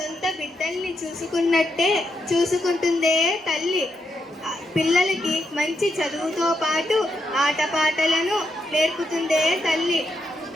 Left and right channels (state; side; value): normal; both; correlation 0.82